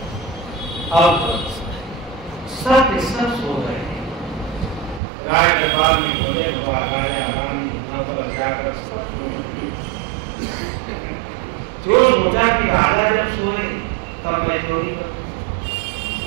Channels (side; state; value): left; drops out; at 5.0 s